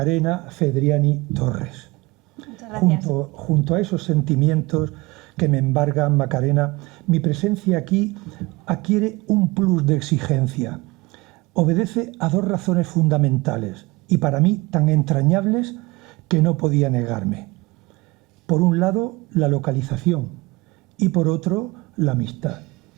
Fedriani Torres. Muchas gracias. Junto a esos sentimientos que me embargan, Macarena, mi presencia aquí adquiere un plus de exigencia. Obedece a dos razones fundamentales y para mí tan entrañables que no podía negarme. Por un lado, la localización y por otro, la amistad.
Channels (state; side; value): quieter; left; 22.7 dB